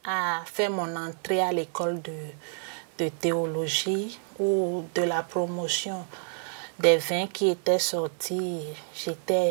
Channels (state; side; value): silent; left; 56 dB below the other